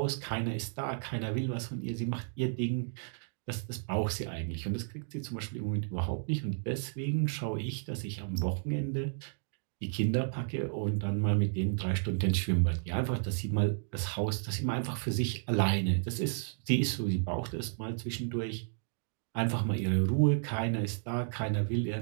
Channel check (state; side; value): silent; left; digital silence